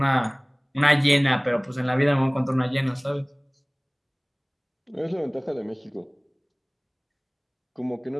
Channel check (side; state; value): both; identical; correlation 1.00